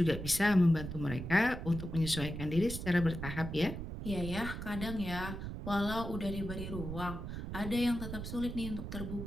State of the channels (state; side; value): noise; right; rumble, 7 dB below the sound